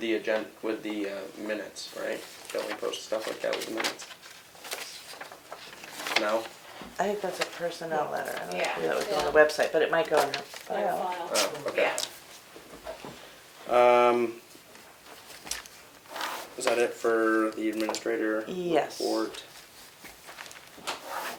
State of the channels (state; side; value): identical; both; correlation 1.00